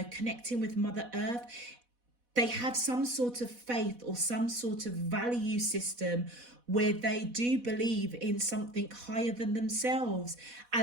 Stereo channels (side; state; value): left; late; 4.1 ms